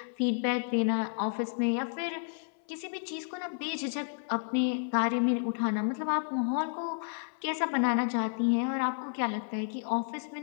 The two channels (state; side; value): silent; right; 57 dB below the other